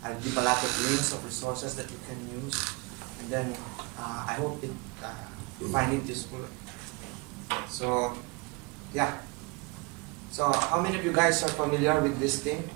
I'll give a lot of links of resources that you can use, and then I hope you find it useful. So yeah. So how many of you guys are familiar with this thing?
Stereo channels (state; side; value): quieter; left; 27.1 dB